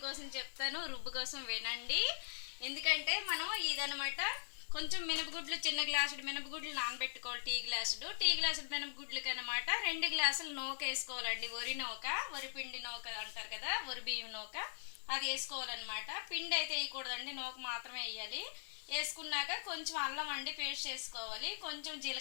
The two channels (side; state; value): right; silent; 50 dB below the other